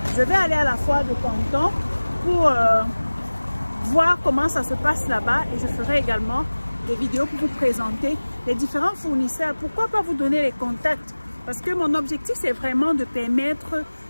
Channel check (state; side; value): inverted; both; correlation -1.00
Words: Je vais aller à la foire de Canton pour voir comment ça se passe là-bas, et je ferai également des vidéos pour vous présenter les différents fournisseurs. Pourquoi pas vous donner les contacts? Parce que mon objectif, c'est vraiment de permettre